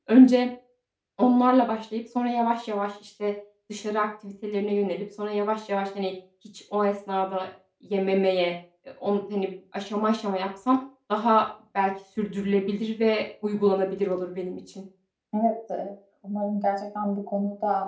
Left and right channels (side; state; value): both; identical; correlation 1.00